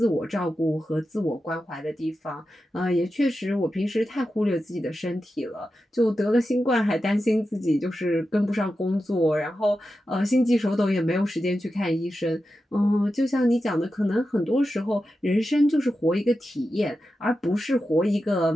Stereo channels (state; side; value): normal; both; correlation 0.91